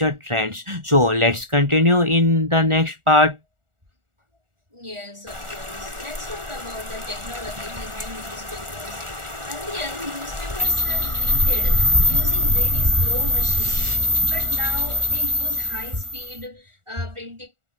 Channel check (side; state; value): left; late; 1.4 ms